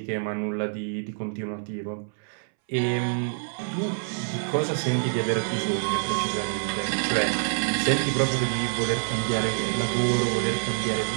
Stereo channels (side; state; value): left; silent; 61 dB below the other